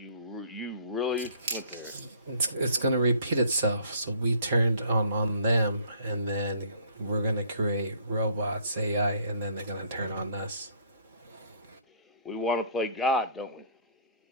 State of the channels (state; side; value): inverted; both; correlation -0.56